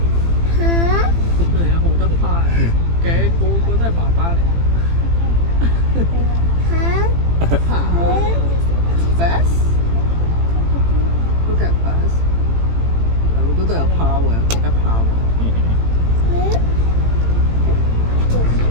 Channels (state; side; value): late; left; 18 ms